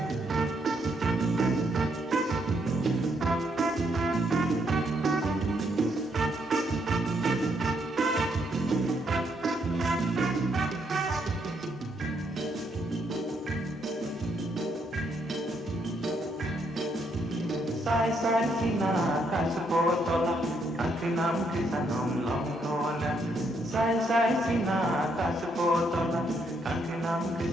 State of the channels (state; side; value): normal; both; correlation 0.74